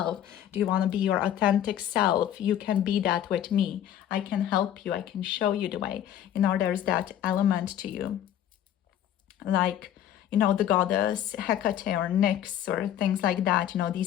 Do you want to be your authentic self? You can be that with me. I can help you. I can show you the way. You know, there's that element to you. Like, you know, the goddess Hecate or Nyx or things like that. You know,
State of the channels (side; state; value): right; quieter; 10.8 dB